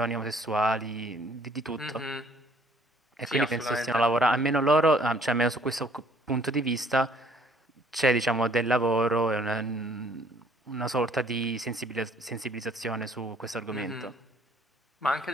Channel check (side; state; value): both; normal; correlation 0.60